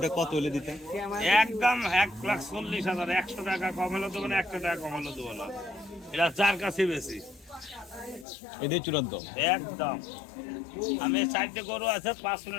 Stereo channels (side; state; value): right; drops out; at 8.2 s